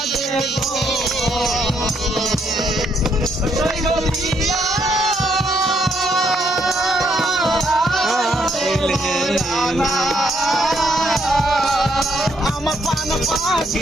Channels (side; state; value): both; normal; correlation 0.73